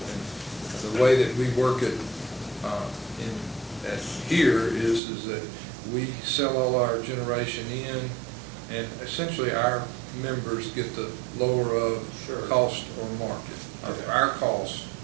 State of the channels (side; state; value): left; drops out; at 5.0 s